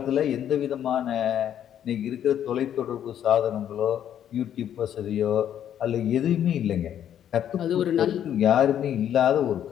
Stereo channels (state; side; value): quieter; right; 10.1 dB